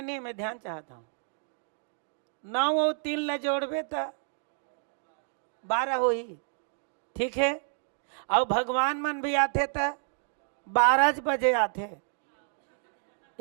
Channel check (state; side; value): silent; left; 58 dB below the other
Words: नहीं, मैं ध्यान चाहता हूँ। 9 और 3 ल जोड़बे तो 12 हो ही, ठीक है। और भगवान मन भी आते तो 12 बजे आते,